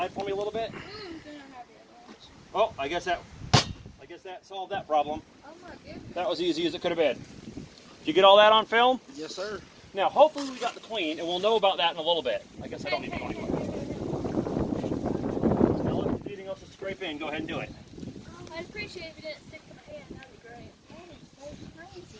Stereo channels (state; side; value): identical; both; correlation 1.00